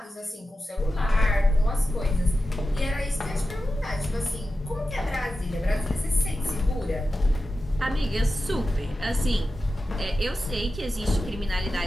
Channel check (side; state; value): both; normal; correlation 0.92